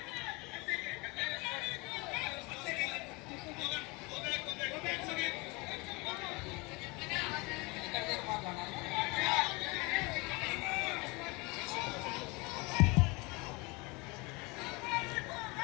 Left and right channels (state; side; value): quieter; right; 26.6 dB